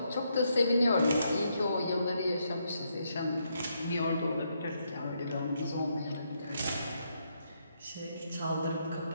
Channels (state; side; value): inverted; both; correlation -0.77